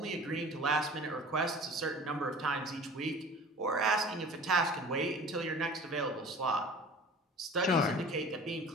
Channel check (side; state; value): both; normal; correlation 0.43